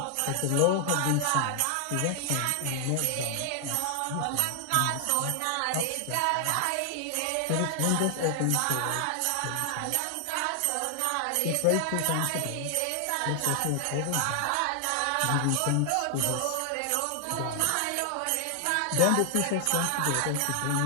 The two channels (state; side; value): different; both; correlation 0.00